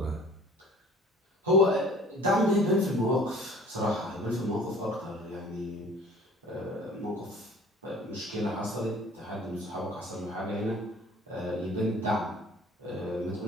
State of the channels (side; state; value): both; normal; correlation 0.49